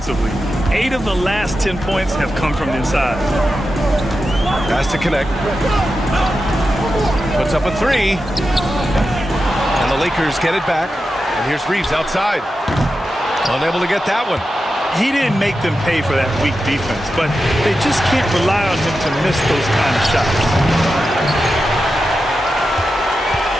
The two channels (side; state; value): both; normal; correlation 0.90